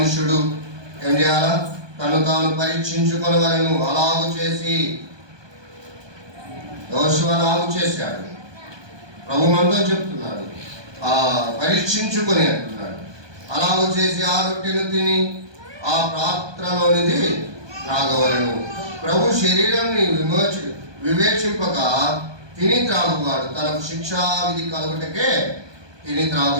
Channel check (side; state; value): left; late; 1.2 ms